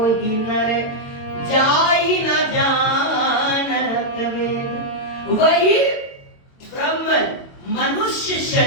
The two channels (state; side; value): late; right; 22 ms